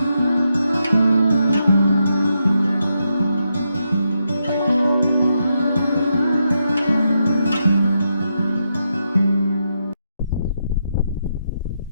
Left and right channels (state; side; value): inverted; both; correlation -0.83